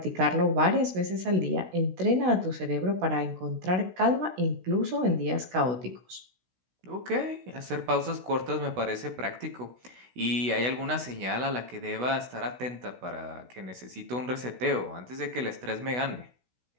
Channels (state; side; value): late; left; 16 ms